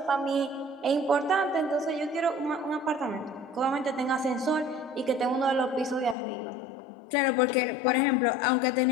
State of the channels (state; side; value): drops out; right; at 6.2 s